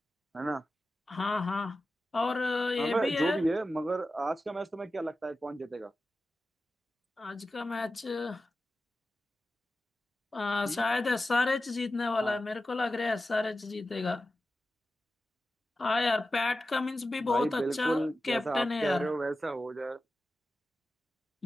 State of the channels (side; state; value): both; normal; correlation 0.93